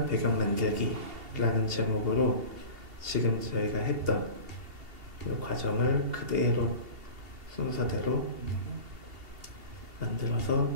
배경 만들기라는 제목으로 지금 저희가 했던 이 과정을 그대로 순서대로 만들어서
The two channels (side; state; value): left; late; 2.7 ms